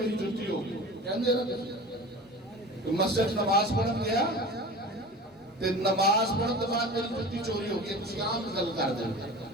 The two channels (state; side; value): normal; both; correlation 0.36